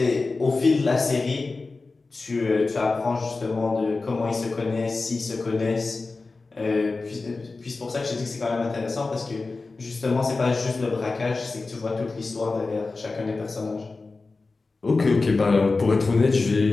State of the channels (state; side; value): quieter; right; 3.8 dB